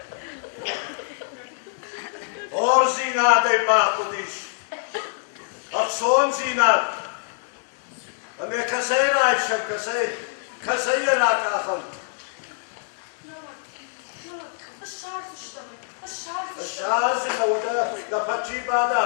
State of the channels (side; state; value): right; silent; digital silence